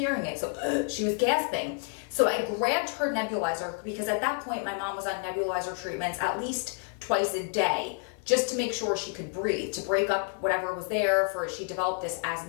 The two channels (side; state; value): right; quieter; 38.8 dB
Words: it. So she was gasping. So I grabbed her nebulizer because at that point my mom was on nebulizer treatments at least twice a day just to make sure she could breathe, to break up whatever was there. She developed this